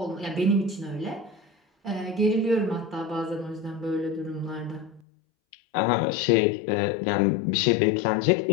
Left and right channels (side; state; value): right; drops out; at 5.0 s